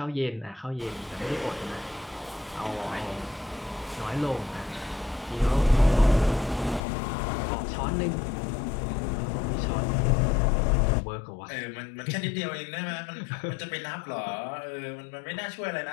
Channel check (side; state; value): right; drops out; at 6.8 s